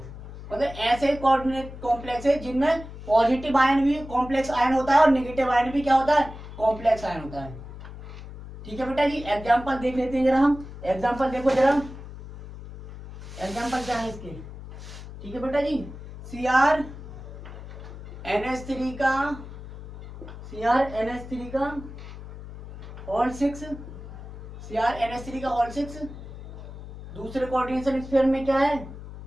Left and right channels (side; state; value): left; noise; hum, 13 dB below the sound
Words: मतलब ऐसे कॉम्प्लेक्स है जिनमें पॉजिटिव आयन भी कॉम्प्लेक्स आयन होता है और नेगेटिव आयन भी क्या होता है, कॉम्प्लेक्स आयन होता है। ठीक है बेटा जी, एग्जांपल देख लेते हैं जरा हम, एग्जांपल देखो जरा, एग्जांपल क्या है इसके। ठीक है बेटा जी, CR NH3 का, CR NH3 का होल 6, CR NH3 का होल 6, दूसरे कोऑर्डिनेशन स्फीयर में क्या है,